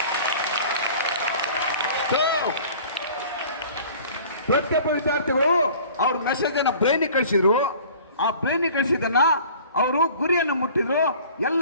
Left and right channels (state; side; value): inverted; both; correlation -0.47